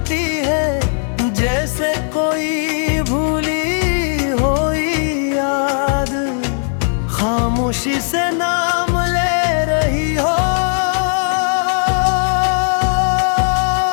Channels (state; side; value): silent; right; digital silence